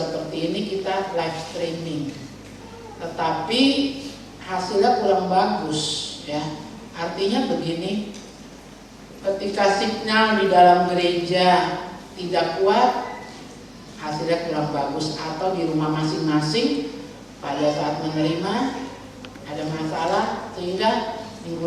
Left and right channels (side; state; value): both; identical; correlation 1.00